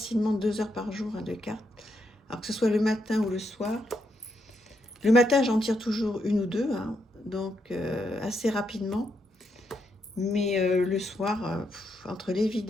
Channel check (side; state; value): both; normal; correlation 0.80